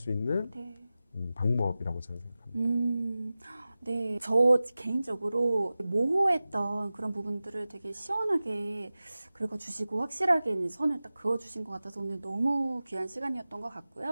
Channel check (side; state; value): both; inverted; correlation -0.96